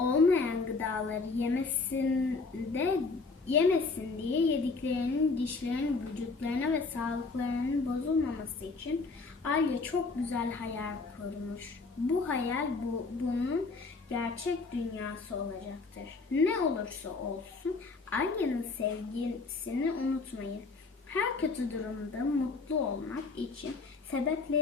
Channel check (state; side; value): quieter; right; 4.1 dB